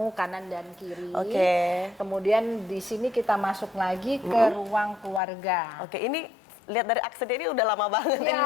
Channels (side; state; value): right; drops out; at 5.2 s